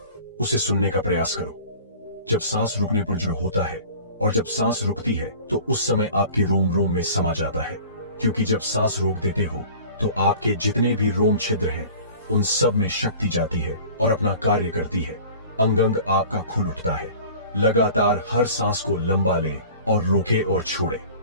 उसे सुनने का प्रयास करो। जब सांस रुकने पर जो होता है और जब सांस रुकती है तो उस समय आपके रोम रोम में समा जाता है। क्योंकि जब सांस रोक देते हो तो आपके जितने भी रोम छिद्र हैं उन सब में शक्ति जाती है और अपना कार्य करती है। अंग अंग आपका खुल उठता है। लगातार हर सांस को लंबा ले और रोके और छोड़े।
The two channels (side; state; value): both; inverted; correlation -0.43